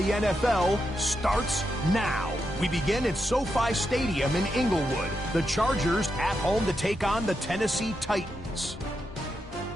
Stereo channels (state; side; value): normal; both; correlation 0.85